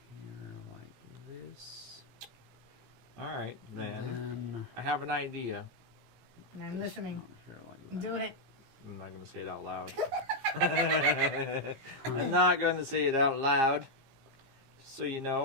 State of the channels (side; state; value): left; late; 18 ms